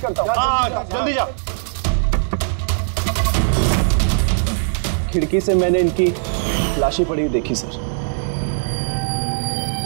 करता हूँ। हाँ, जल्दी जा। खिड़की से मैंने इनकी लाशें पड़ी हुई देखी सर,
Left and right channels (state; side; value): silent; left; 66 dB below the other